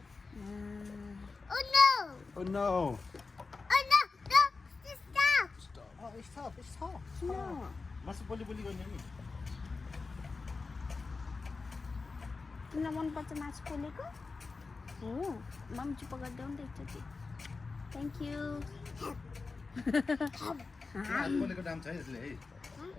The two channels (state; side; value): quieter; right; 4.1 dB